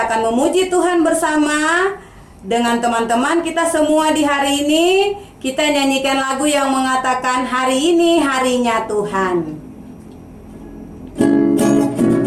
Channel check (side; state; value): both; identical; correlation 1.00